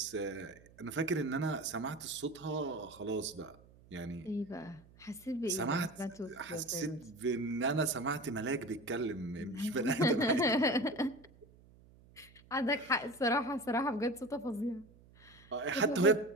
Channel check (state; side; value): noise; right; hum, 25 dB below the sound